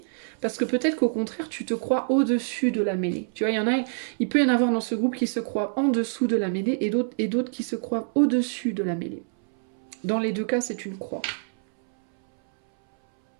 Parce que peut-être qu'au contraire, tu te crois au-dessus de la mêlée. Tu vois, il peut y en avoir dans ce groupe qui se croient en dessous de la mêlée et d'autres qui se croient au-dessus de la mêlée. Dans les deux cas, c'est une croix.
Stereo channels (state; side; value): silent; left; 61 dB below the other